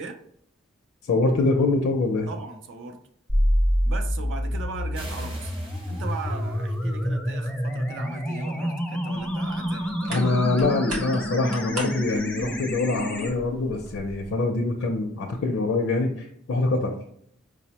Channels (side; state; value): both; normal; correlation 0.62